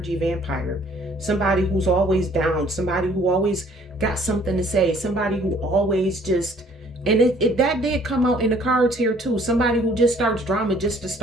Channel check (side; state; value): both; normal; correlation 0.58